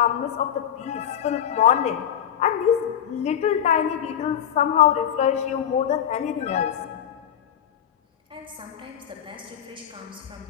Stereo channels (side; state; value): right; quieter; 9.6 dB